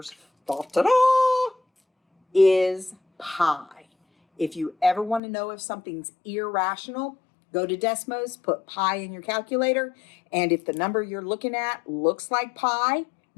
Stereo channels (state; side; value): drops out; right; at 5.2 s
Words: is pi. If you ever want to know if something's irrational, go to Desmos, put pi in your calculator, and if the number you're looking at looks like pi,